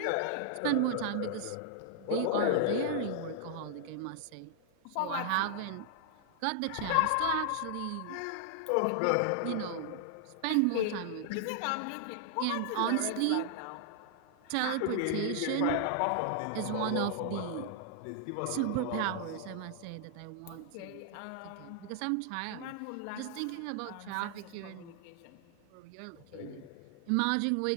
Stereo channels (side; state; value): both; different; correlation 0.00